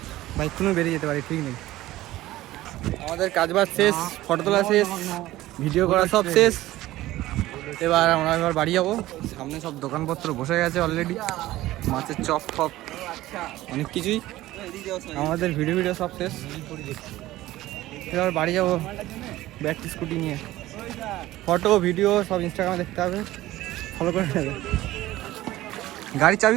বাইক কোনো বেরিয়ে যেতে পারি, ঠিক নেই। আমাদের কাজবাজ শেষ, ফটো তোলা শেষ, ভিডিও করা সব শেষ। এবার বাড়ি যাবো। সামনে সব দোকানপত্র বসে গেছে অলরেডি, মাছের চপ ফপ অনেক কিছুই। আমাদের ভিডিও সব শেষ। এবার বাড়ি যাবো ব্যাটারি স্কুটি নিয়ে। ফটো ভিডিও সব ইনস্টাগ্রামে দেখতে হবে, ফলো করে নেবে। গাড়ির চাবি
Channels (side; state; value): left; quieter; 16.2 dB